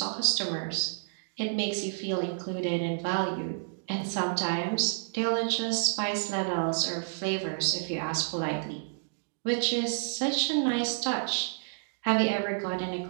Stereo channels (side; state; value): left; silent; digital silence